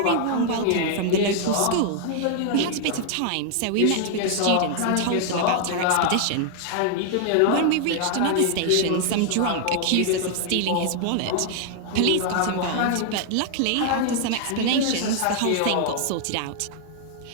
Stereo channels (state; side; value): different; both; correlation 0.00